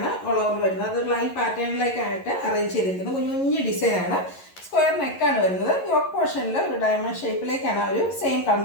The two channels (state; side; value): late; right; 11 ms